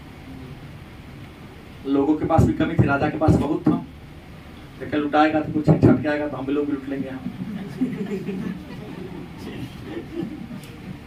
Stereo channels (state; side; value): identical; both; correlation 1.00